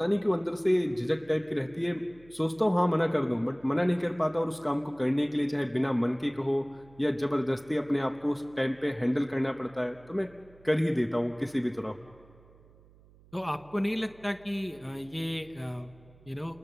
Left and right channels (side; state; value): right; noise; hum, 26 dB below the sound